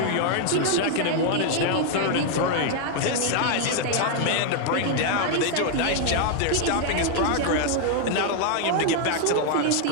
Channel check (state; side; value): different; both; correlation 0.00